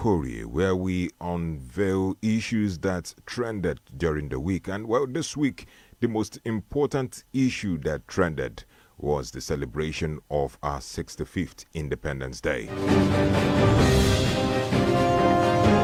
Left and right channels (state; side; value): identical; both; correlation 1.00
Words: where we unveil issues that trended during the week. And well, this week, the most important issue that trended was the celebration of our 65th Independence Day.